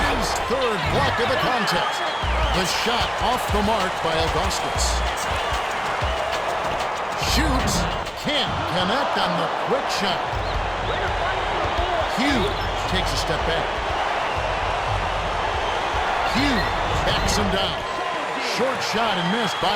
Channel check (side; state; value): both; identical; correlation 1.00